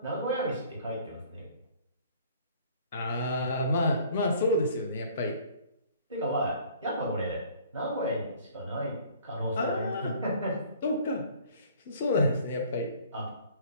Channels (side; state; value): both; inverted; correlation -0.53